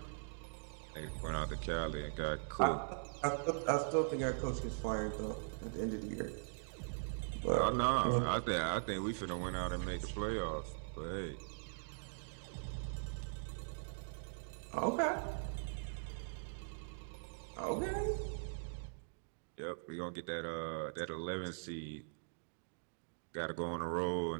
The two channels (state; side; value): silent; left; digital silence